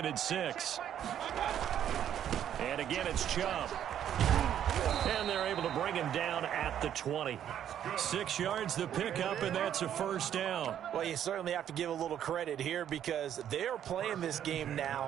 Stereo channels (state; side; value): quieter; left; 10.1 dB